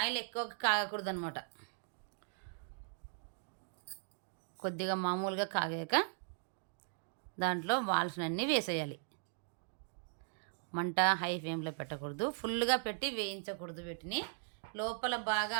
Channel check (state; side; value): silent; left; digital silence